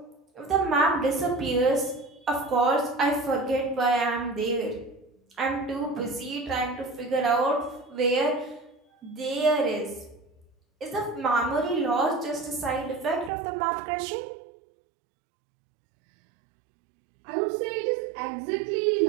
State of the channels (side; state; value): left; drops out; at 13.3 s